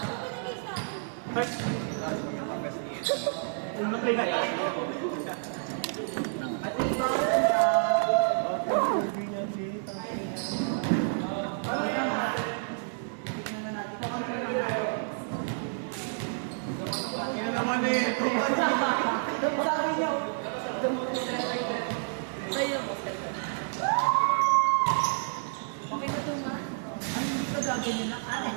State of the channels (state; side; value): silent; left; digital silence